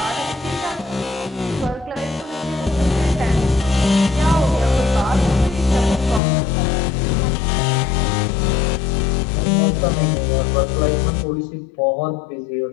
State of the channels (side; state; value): right; drops out; at 6.2 s